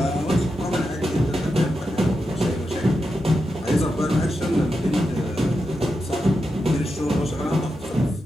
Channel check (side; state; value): both; normal; correlation 0.87